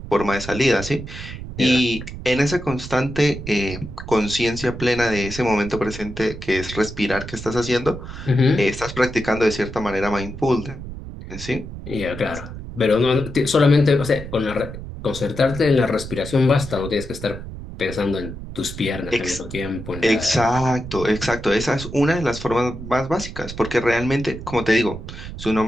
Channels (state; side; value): noise; right; rumble, 11 dB below the sound